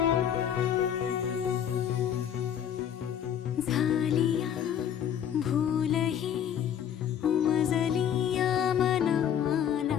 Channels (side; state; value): right; quieter; 9.3 dB